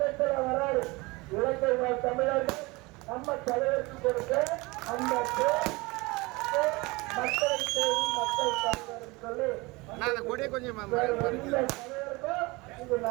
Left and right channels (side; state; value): left; quieter; 23.9 dB